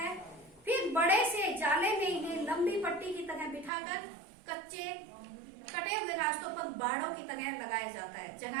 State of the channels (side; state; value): left; drops out; at 3.7 s